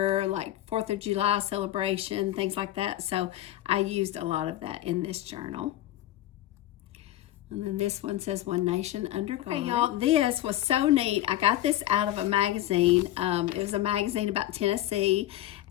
like 4th of July celebration, things like that. So I used a lot of that in this journal. And then this one says One Nation Under God. Okay, y'all, this was so neat. I got this out of a magazine. It was a magazine about Tennessee,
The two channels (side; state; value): right; quieter; 14.0 dB